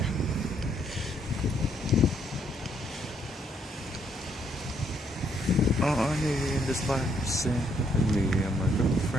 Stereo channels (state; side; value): normal; both; correlation 0.71